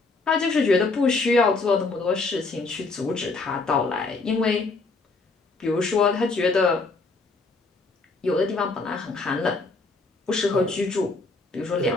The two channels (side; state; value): right; quieter; 3.7 dB